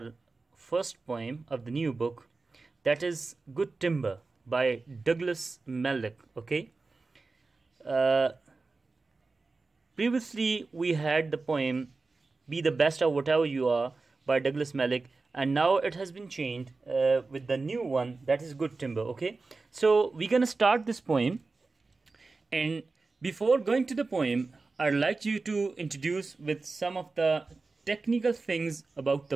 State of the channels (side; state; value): left; quieter; 3.8 dB